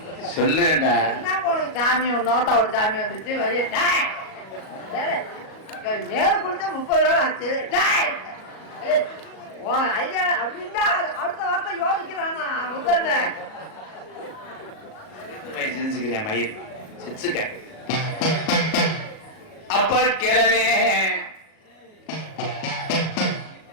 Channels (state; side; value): late; right; 37 ms